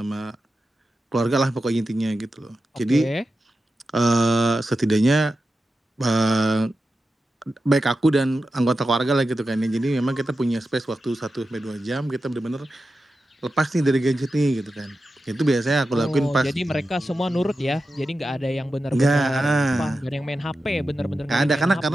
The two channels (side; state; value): both; normal; correlation 0.91